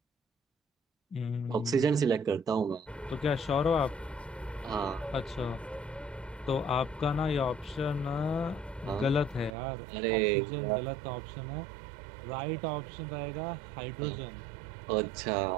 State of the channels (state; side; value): drops out; left; at 9.5 s